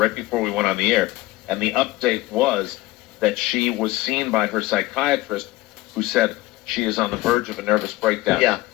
before we went on the air, and the update was that she was seen by her psychiatrist, who said she is on the verge of a nervous breakdown. Yeah.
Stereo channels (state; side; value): quieter; right; 18.4 dB